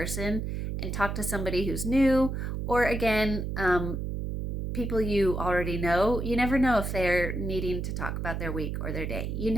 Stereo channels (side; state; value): right; noise; hum, 3 dB below the sound